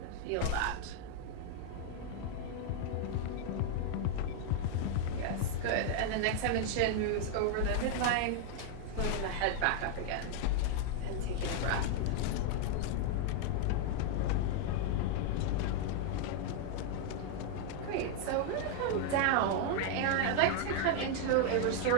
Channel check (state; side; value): different; both; correlation 0.00